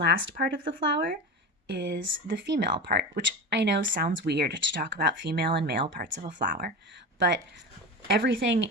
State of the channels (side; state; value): both; normal; correlation 0.26